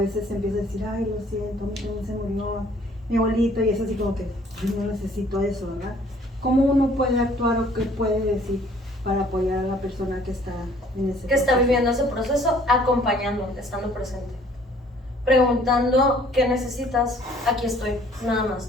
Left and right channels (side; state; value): both; normal; correlation 0.57